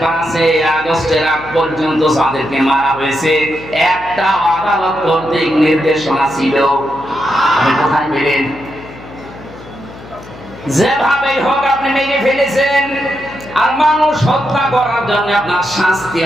5 আগস্টের আগ পর্যন্ত যাদেরকে মারা হয়েছে, একটা আদালত কর্তৃক নির্দেশনা ছিল। আপনি কোথায় পেলেন? যেভাবেই হোক আপনি মেরে ফেলেছেন, আর মানুষ হত্যা করার জন্য আপনার শাস্তি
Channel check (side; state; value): left; noise; hum, 18 dB below the sound